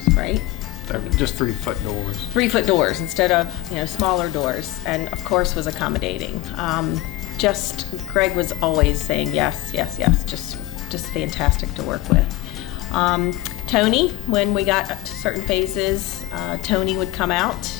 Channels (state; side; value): quieter; right; 17.1 dB